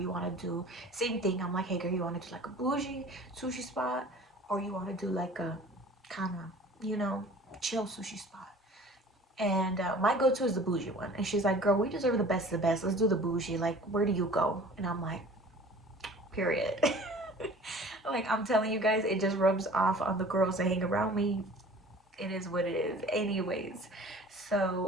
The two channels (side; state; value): both; normal; correlation 0.46